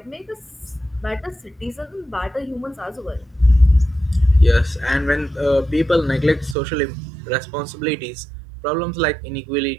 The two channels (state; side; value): drops out; left; at 6.6 s